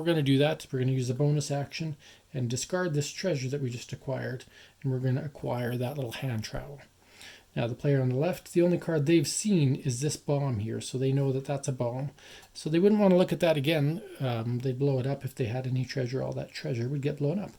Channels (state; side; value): identical; both; correlation 1.00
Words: going to do that. We're going to use the bonus action and discard this treasure that we just acquired, and we're going to acquire that little hand trowel. Now, the player on the left, the only card they've seen is this bomb here, so they know that that's a bomb. So they wouldn't want to look at that again. They'd blow it up if they had any treasure. All that treasure would get blown up.